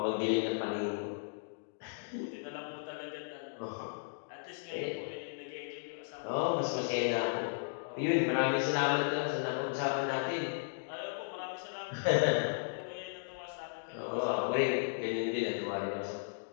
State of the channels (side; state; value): right; silent; digital silence